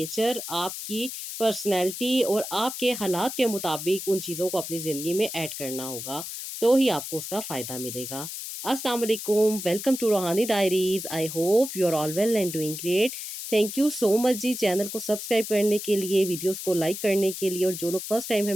आपकी पर्सनैलिटी और आपके हालात के मुताबिक उन चीज़ों को अपनी ज़िंदगी में ऐड करना होगा, तो ही आपको उसका फ़ायदा मिलेगा। अस्सलाम वालेकुम, welcome to Roohani diaries. I hope you are all well and doing great. Thank you so much जी चैनल को सब्सक्राइब करने के लिए, वीडियोज़ को लाइक करने के लिए और जो लोग फर्स्ट टाइम है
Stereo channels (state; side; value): noise; left; hiss, 7 dB below the sound